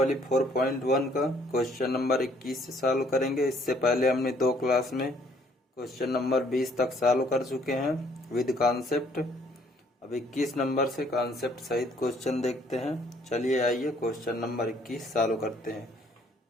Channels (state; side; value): normal; both; correlation 0.63